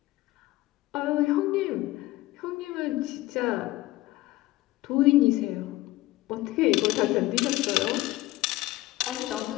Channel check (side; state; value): right; quieter; 17.8 dB